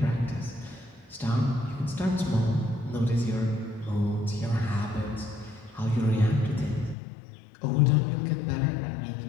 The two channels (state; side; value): drops out; right; at 7.0 s